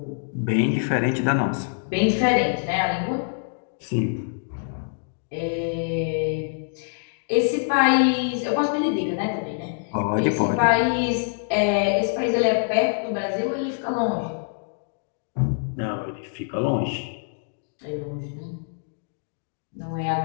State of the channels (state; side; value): silent; right; digital silence